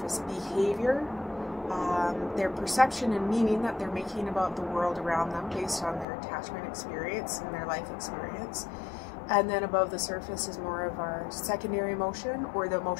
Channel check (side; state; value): right; drops out; at 6.1 s